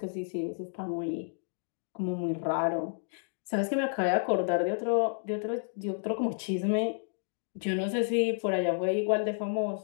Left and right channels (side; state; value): right; silent; digital silence